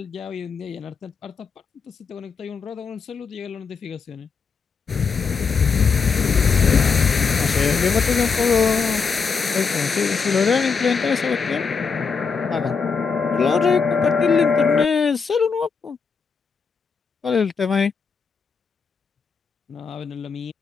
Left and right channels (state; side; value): quieter; right; 5.4 dB